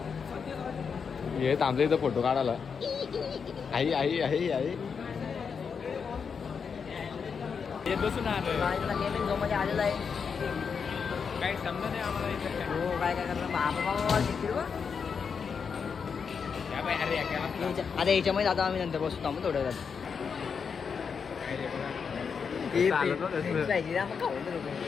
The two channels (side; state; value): right; quieter; 6.1 dB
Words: हे थांबलं इथं फोटो काढायला. आई आई आई आई हे बसून गेमिंग झोन मध्ये आलेला आहे. काही समजा नाही आम्हाला इथं. हो काय काय करणार बाबा शिकतील बा. आता याच्यामध्ये आता आम्ही नंतर बसतो मग थोड्या वेळात.